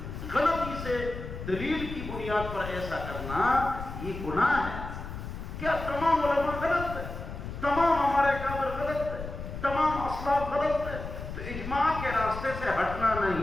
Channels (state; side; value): noise; left; rumble, 8 dB below the sound